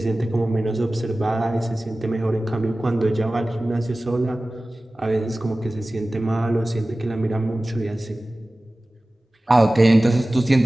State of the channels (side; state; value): both; normal; correlation 0.97